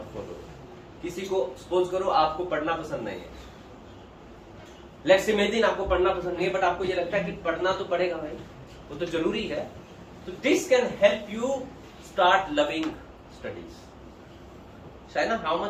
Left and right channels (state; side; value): identical; both; correlation 1.00